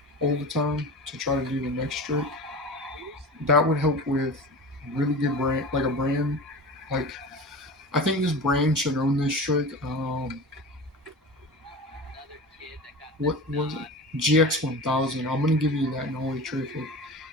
all the time to try to do the next trick. That would help with really good brand, like a brand. Like I think this brand should own this trick. What was it? GX1000. I'm gonna give you that Nolly tray flip.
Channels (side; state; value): both; normal; correlation 0.32